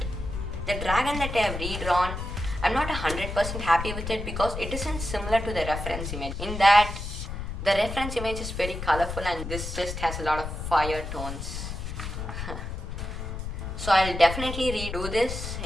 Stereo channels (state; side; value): noise; left; rumble, 6 dB below the sound